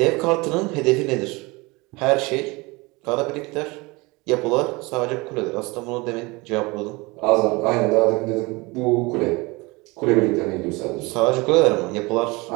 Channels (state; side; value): quieter; left; 24.7 dB